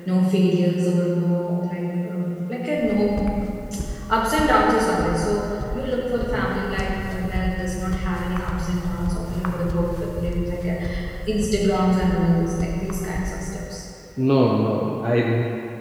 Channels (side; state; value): both; identical; correlation 1.00